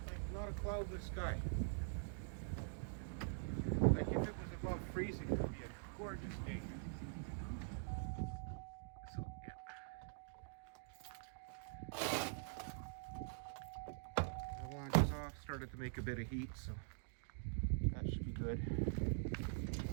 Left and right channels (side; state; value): left; silent; digital silence